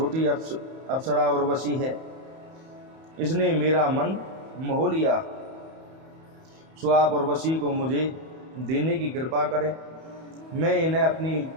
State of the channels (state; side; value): late; left; 31 ms